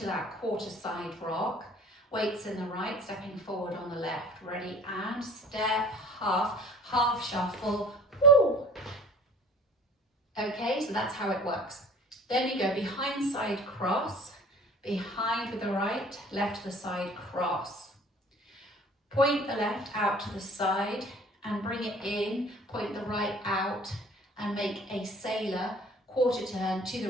that quarter side rock, weights in the right, stepping forward on the left, ready, and step, half shuffle, woo. Okay, so that's how it works. Then you go behind side cross, behind with the right, left to the side cross. Point the left out to the side and bring it in, point the right out and make a sailor quarter turn to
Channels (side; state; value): both; normal; correlation 0.48